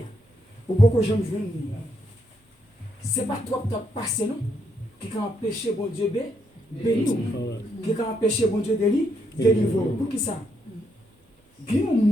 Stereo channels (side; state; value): both; normal; correlation 0.76